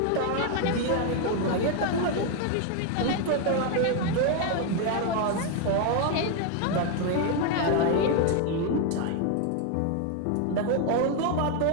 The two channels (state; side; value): different; both; correlation 0.01